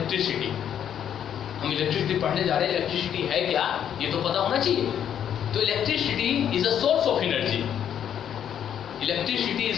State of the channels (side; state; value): right; quieter; 9.4 dB